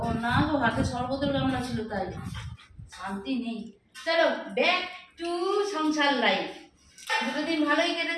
না গো, হাতে শরবতের গামলা ছিল তাই শান্তি নেই। চলো ব্যাক টু সংসার লাইফ। দুটো দিন ভালোই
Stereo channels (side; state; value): both; identical; correlation 1.00